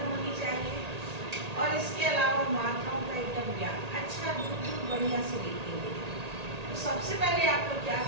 होनी चाहिए, और इसके अलावा मात्राओं का एकदम ज्ञान अच्छा दूर बढ़िया से लिखेंगे। तो सबसे पहले आप लोग क्या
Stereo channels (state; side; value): late; left; 1.8 ms